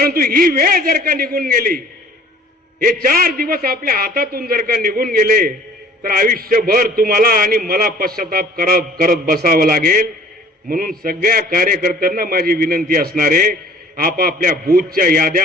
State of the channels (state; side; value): normal; both; correlation 0.51